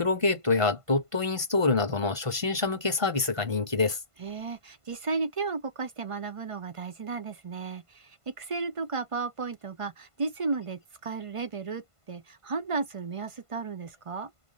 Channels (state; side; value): late; left; 1.5 ms